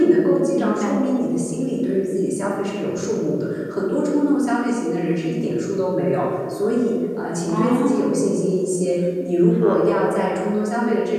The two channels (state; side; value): identical; both; correlation 1.00